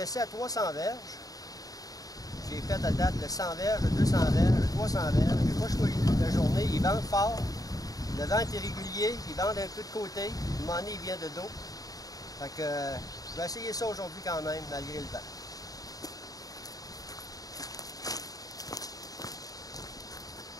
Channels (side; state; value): right; late; 0.18 ms